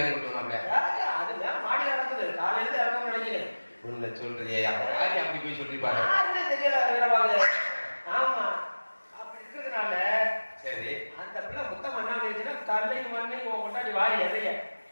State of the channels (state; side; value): inverted; both; correlation -1.00